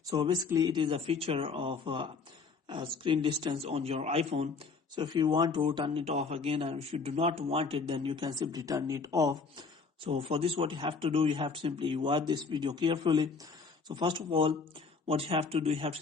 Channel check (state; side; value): quieter; right; 4.7 dB